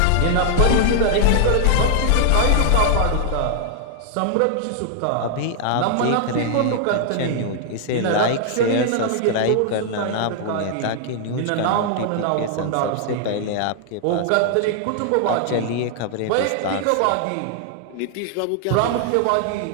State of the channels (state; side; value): different; both; correlation -0.01